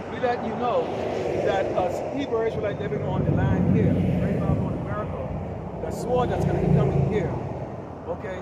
We let you know that us Hebrew Israelites living on the land here, right now on America, the sword that's going to be coming here,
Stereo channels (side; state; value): both; identical; correlation 1.00